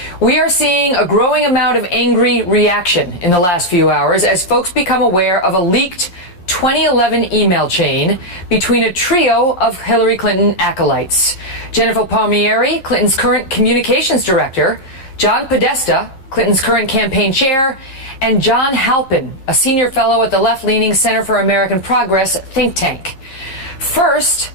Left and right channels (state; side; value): late; right; 11 ms